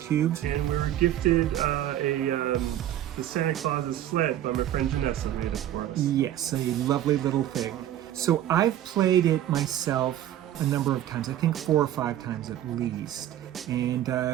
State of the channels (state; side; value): quieter; left; 12.1 dB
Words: And we were gifted the Santa Claus's sled by my friend Janessa made it for us. Yes, a lovely little thing. So I've played it myself a number of times, I think 4 or 5 times at least. And